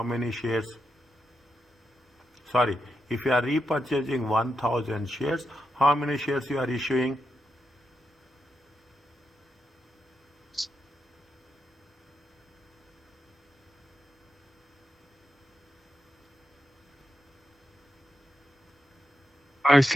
many shares? Sorry, if you are repurchasing 1000 shares, how many shares you are issuing? I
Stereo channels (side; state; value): both; normal; correlation 0.86